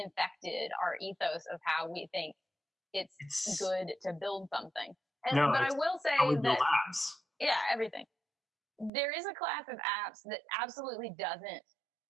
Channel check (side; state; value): left; drops out; at 8.9 s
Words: our ethos of how we think it's good to build something. But I will say that apps. Yeah, everything. There is a class of apps that absolutely doesn't